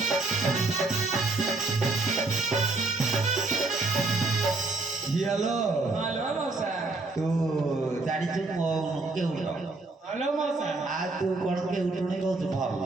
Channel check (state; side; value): quieter; left; 3.3 dB